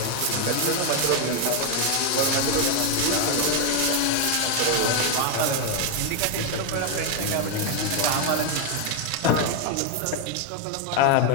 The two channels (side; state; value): both; different; correlation 0.01